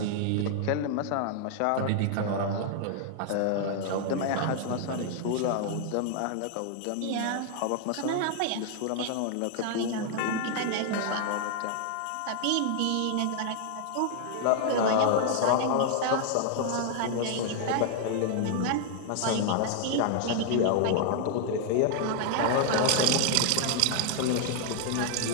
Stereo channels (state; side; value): different; both; correlation 0.00